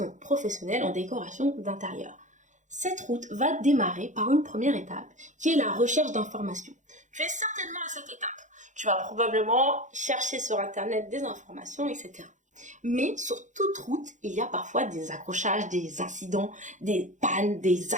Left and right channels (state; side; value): late; left; 0.36 ms